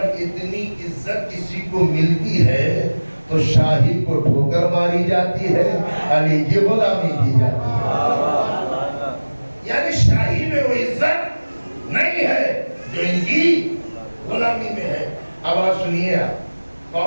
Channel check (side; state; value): both; inverted; correlation -1.00